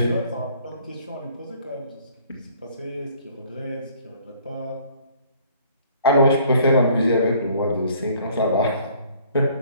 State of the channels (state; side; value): inverted; both; correlation -0.57